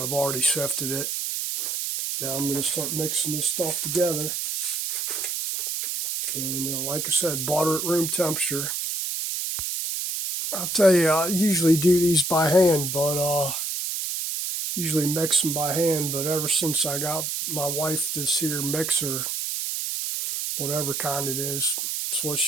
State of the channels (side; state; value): right; noise; hiss, 2 dB below the sound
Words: I've already sifted it. Now I'm going to start mixing this stuff together. And like I said, butter at room temperature. I'll tell you, I usually do these by hand, but usually mix them by hand. But ever since I got my wife this here mixer, whatever kind it is, it's what